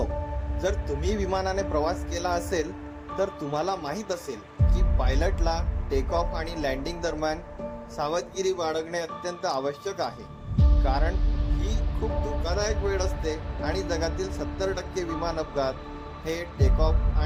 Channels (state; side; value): identical; both; correlation 1.00